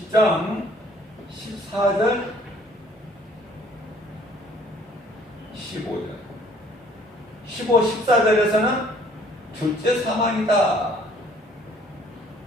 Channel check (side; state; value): both; normal; correlation 0.58